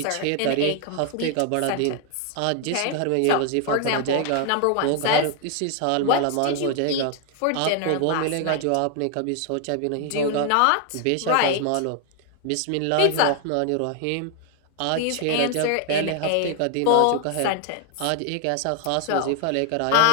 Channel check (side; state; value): both; different; correlation 0.00